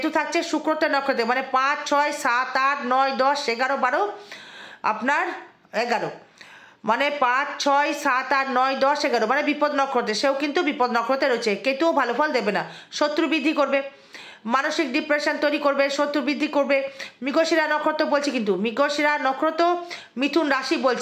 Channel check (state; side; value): identical; both; correlation 1.00